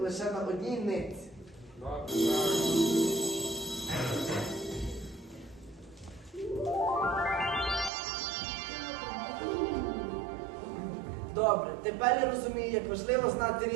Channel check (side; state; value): left; drops out; at 7.9 s